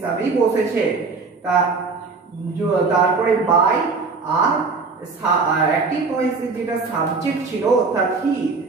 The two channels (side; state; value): left; quieter; 4.4 dB